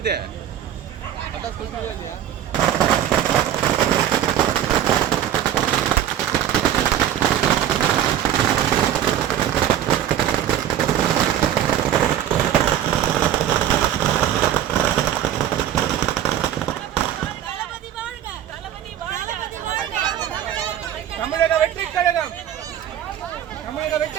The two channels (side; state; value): left; quieter; 10.9 dB